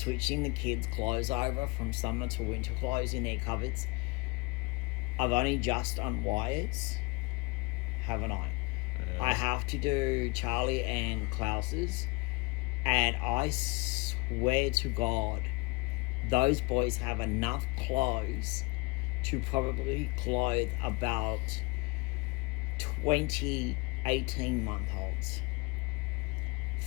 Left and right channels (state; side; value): quieter; right; 25.1 dB